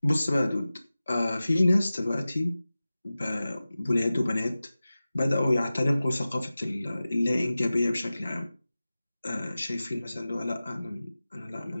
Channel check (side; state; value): both; inverted; correlation -0.96